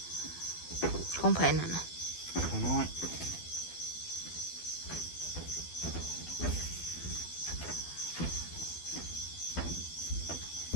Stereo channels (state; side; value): late; right; 12 ms